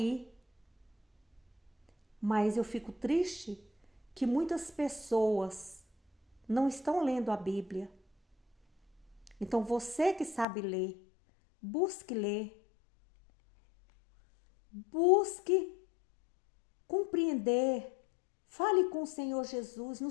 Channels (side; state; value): right; drops out; at 10.5 s